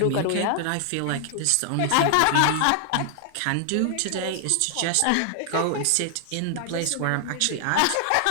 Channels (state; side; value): different; both; correlation 0.00